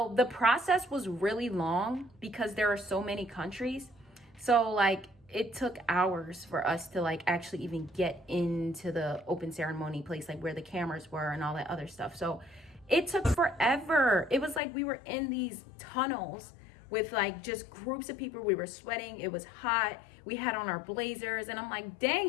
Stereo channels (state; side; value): drops out; right; at 14.6 s